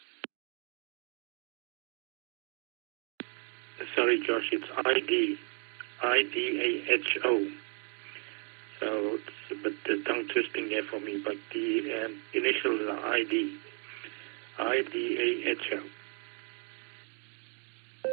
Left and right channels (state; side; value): quieter; left; 36.4 dB